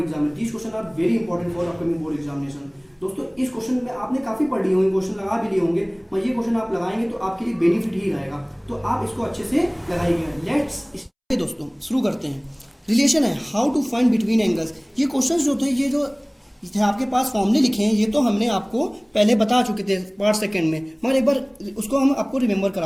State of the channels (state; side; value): identical; both; correlation 1.00